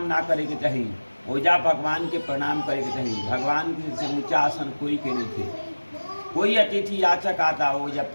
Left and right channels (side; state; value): both; inverted; correlation -1.00